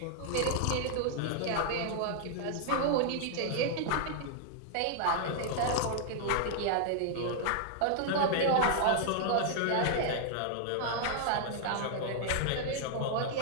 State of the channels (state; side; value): different; both; correlation -0.01